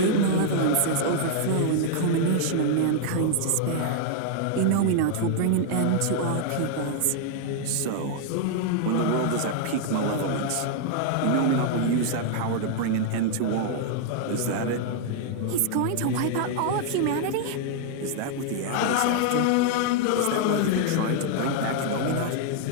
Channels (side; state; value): both; different; correlation 0.00